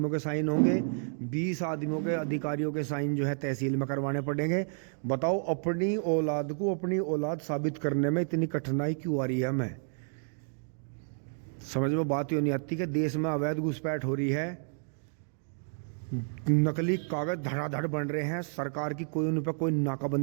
के साइन होंगे। 20 आदमियों के अधिकारियों के साइन जो है तहसील में करवाने पड़ेंगे। बताओ अपनी औलाद को अपनी औलाद साबित करने में इतनी कठिनाई क्यों आ रही है हमें? समझ में बात ही नहीं आती कि देश में अवैध घुसपैठ हो रही है, नकली कागज धड़ाधड़ बन रहे हैं। सरकार की कोई उन पर कोई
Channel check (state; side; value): silent; left; 57 dB below the other